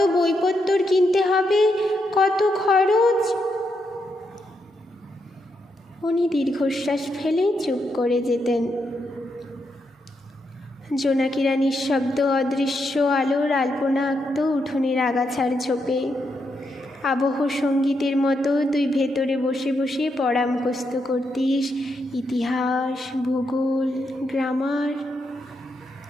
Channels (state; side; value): normal; both; correlation 0.81